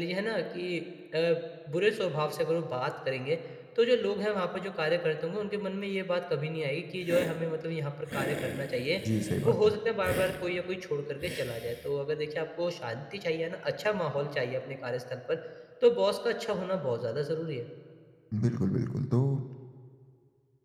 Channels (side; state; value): both; identical; correlation 1.00